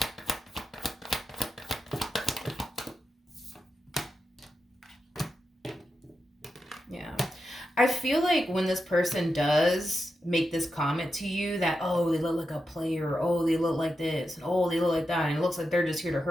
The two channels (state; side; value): normal; both; correlation 0.88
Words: Yeah. I feel like when this person does make this comment to you that, oh, they look like a player, oh, they look like this, and oh, they look like that, and it looks like they're just here to